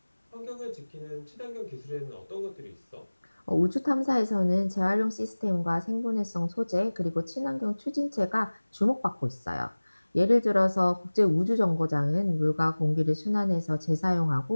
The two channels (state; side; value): inverted; both; correlation -1.00